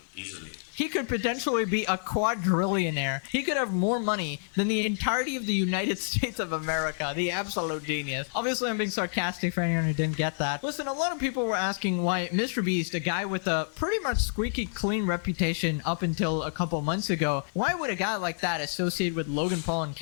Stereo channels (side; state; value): right; silent; 59 dB below the other